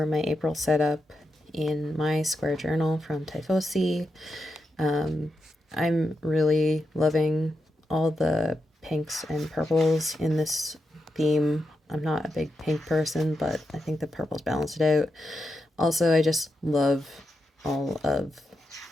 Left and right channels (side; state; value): both; normal; correlation 0.86